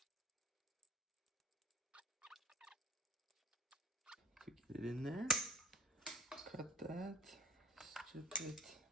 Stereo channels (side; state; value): both; normal; correlation 0.42